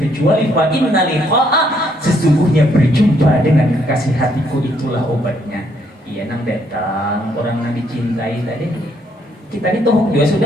fa inna liqa'a, sesungguhnya berjumpa dengan kekasih hatiku itulah obatnya. Iya nang datang orang yang dicintai tadi. Kita ini toh juga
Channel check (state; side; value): normal; both; correlation 0.70